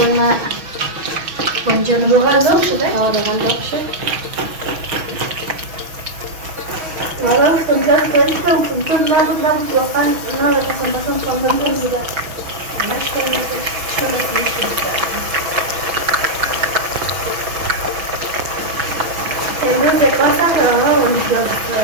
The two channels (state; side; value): late; left; 6.2 ms